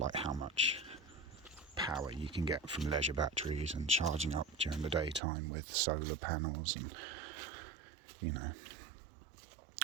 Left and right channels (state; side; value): drops out; left; at 5.2 s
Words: how much power you can get from leisure batteries and charging up during the daytime with solar panels, and you know,